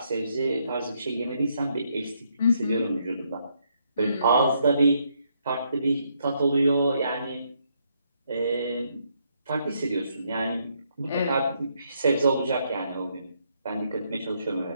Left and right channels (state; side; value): inverted; both; correlation -0.74